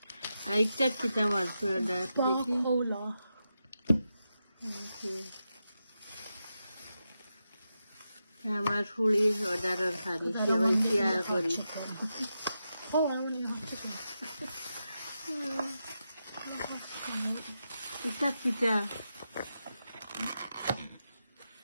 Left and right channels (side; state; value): both; inverted; correlation -0.88